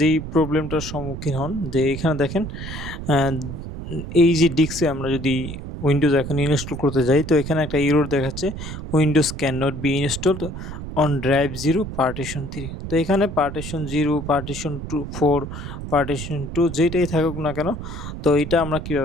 যেই প্রবলেমটার সম্মুখীন হন যে এখানে দেখেন এই যে ডিস্কে আমরা যদি উইন্ডোজ এখন ইনস্টল করতে যাই, তো এখানে একটা এরর দেখাচ্ছে windows can not be installed on drive 0 partition 3। তো এখানে পার্টিশন 0, পার্টিশন 4, পার্টিশন 2 যেটাই থাকুক না কেন, তো এটা আমরা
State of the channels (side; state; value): right; noise; rumble, 8 dB below the sound